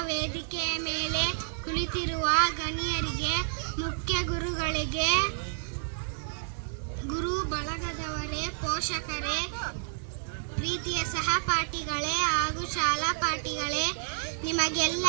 ವೇದಿಕೆಯ ಮೇಲೆ ಕುಳಿತಿರುವ ಗಣ್ಯರಿಗೆ, ಮುಖ್ಯ ಗುರುಗಳಿಗೆ, ಗುರು ಬಳಗದವರೇ, ಪೋಷಕರೇ, ಪ್ರೀತಿಯ ಸಹಪಾಠಿಗಳೇ ಹಾಗೂ ಶಾಲಾ ಪಾಠಿಗಳೇ,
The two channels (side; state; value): left; silent; digital silence